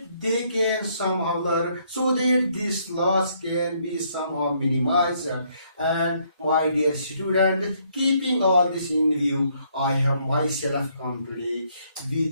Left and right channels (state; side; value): inverted; both; correlation -0.70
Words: they can somehow learn, so that this loss can be somehow minimized. And my dear students, keeping all this in view, I have myself come today